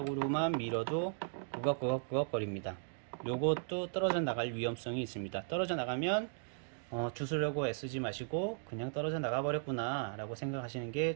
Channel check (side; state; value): left; silent; digital silence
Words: 밀어도 구걱구걱 거립니다. 요것도 떨어져 나갈 위험성이 있습니다. 떨어져 나가면 주스려고 애쓰지 마시고 그냥 떨어져 나가 버렸구나 라고 생각하시는